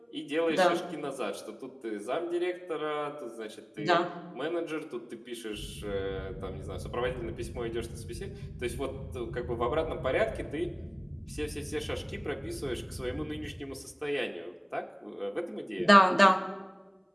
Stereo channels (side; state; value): both; identical; correlation 1.00